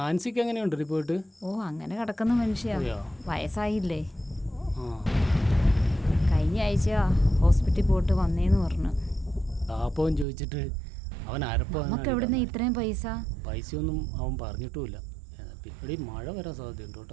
എങ്ങനെയുണ്ട് റിപ്പോർട്ട്? അങ്ങനെ കിടക്കുന്ന മനുഷ്യ, വയസ്സായില്ലേ. കഴിഞ്ഞ ആഴ്ച ഹോസ്പിറ്റലിൽ പോയിട്ട് വന്നേന്ന് പറഞ്ഞു. പാപ്പവും ചോദിച്ചിട്ട് അവൻ നമുക്ക് എവിടുന്ന് ഇത്രയും പൈസയൊന്നും അവൻ പറഞ്ഞിട്ടുമില്ല. എടി മഴ വരാൻ സാധ്യതയുണ്ട്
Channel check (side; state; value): left; drops out; at 10.2 s